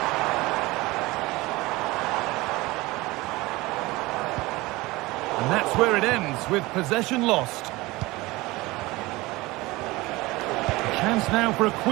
And that's where it ends, with possession lost. Chance now for a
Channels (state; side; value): quieter; left; 20.9 dB